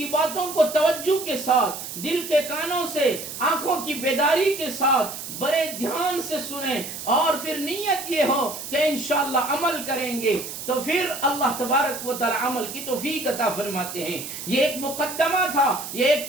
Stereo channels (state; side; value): noise; right; hiss, 9 dB below the sound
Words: باتوں کو توجہ کے ساتھ، دل کے کانوں سے، آنکھوں کی بیداری کے ساتھ بڑے دھیان سے سنیں، اور پھر نیت یہ ہو کہ انشاءاللہ عمل کریں گے تو پھر اللہ تبارک و تعالی عمل کی توفیق عطا فرماتے ہیں۔ یہ ایک مقدمہ تھا، یہ ایک